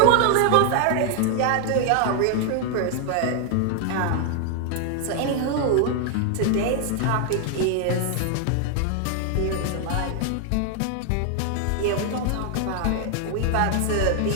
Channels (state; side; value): different; both; correlation 0.00